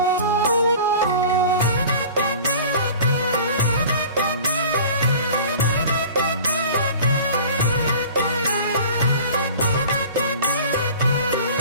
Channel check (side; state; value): both; inverted; correlation -0.42